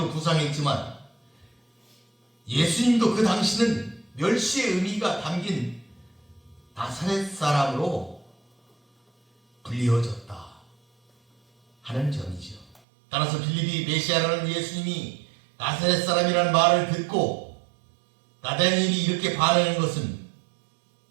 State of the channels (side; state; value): left; drops out; at 12.8 s